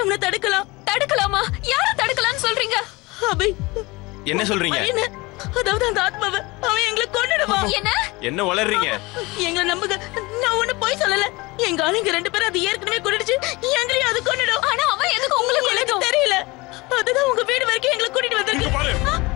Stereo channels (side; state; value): right; quieter; 23.5 dB